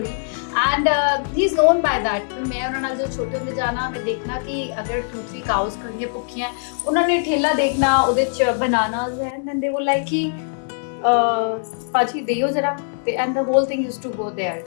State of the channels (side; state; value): right; silent; 65 dB below the other